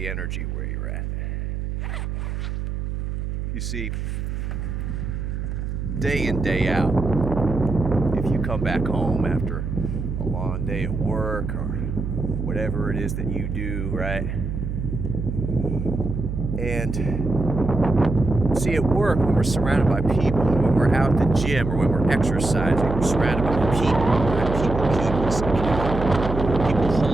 energy where you're at. You see, day in, day out, if you come back home after a long day at work or whatever it is that you do, right? And see, at work, when we're surrounded by people, or when we're out at the gym, or when we're exercising, we're surrounded by people, right? People keep us accountable. People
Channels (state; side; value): noise; right; hum, 4 dB below the sound